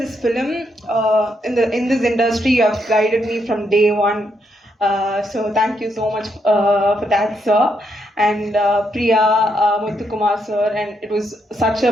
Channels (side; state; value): both; normal; correlation 0.78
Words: this film, in this industry, you have guided me from day one. So thank you so much for that, sir. And Priya, Muthukumar sir, and it was such